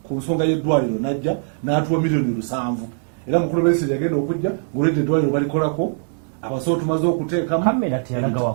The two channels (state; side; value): silent; left; 65 dB below the other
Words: ku nsonga y'eddwaliro najja n'atuwa $7,000,000 era mukulu Besigye yagenda okujja ng'olwedde eddwaliro balikolako abasawo tumaze okuteekamu kamera teyalaga